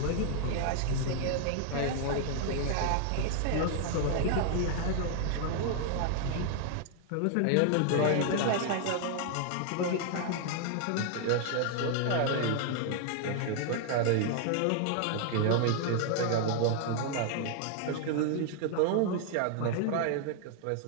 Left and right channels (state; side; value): different; both; correlation 0.00